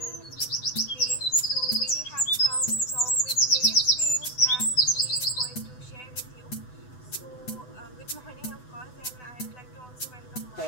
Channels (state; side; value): late; right; 8.0 ms